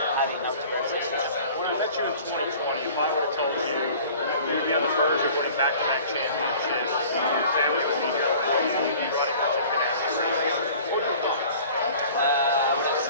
having outdoor sessions. When I met you in 2020, if I would have told you you'd be on the verge of winning back-to-back championships, your family would be here, you'd be running for Ganassi race, I would have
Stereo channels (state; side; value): inverted; both; correlation -0.46